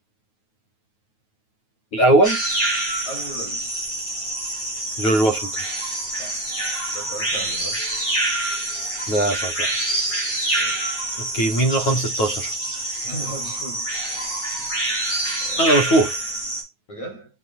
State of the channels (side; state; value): right; late; 9.3 ms